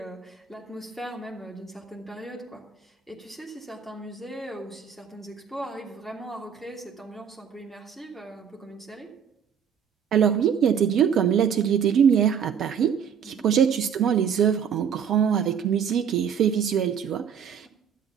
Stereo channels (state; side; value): quieter; left; 7.7 dB